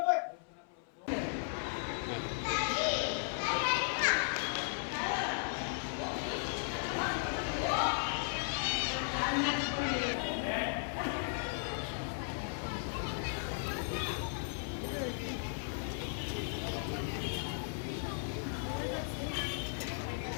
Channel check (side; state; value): right; silent; 54 dB below the other